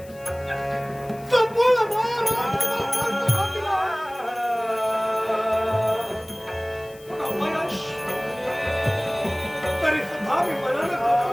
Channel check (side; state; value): left; noise; hiss, 24 dB below the sound